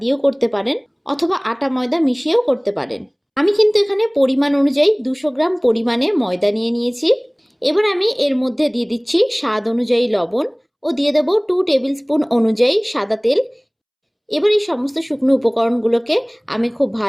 দিয়েও করতে পারেন অথবা আটা ময়দা মিশিয়েও করতে পারেন। আমি কিন্তু এখানে পরিমাণ অনুযায়ী 200 গ্রাম পরিমাণে ময়দা নিয়ে নিয়েছি। এবার আমি এর মধ্যে দিয়ে দিচ্ছি স্বাদ অনুযায়ী লবণ ও দিয়ে দেব 2 টেবিল স্পুন অনুযায়ী সাদা তেল। এবার এই সমস্ত শুকনো উপকরণগুলোকে আমি খুব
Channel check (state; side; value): identical; both; correlation 1.00